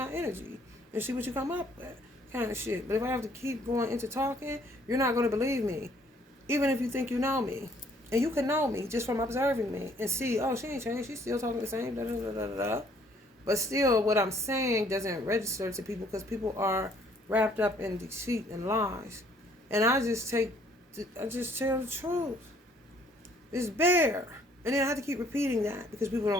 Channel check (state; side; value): normal; both; correlation 0.62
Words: energy and see what you come up with, kind of shit. But if I have to keep going into talking, you're not going to believe me, even if you think you know me. And you can know me just from observing me and see, oh, she ain't changed. She's still talking the same, da da da da da. But still, what I'm saying doesn't register to people because people are wrapped up in deceit and lies. And I just tell the truth. It's bare. And then I have to keep repeating that because people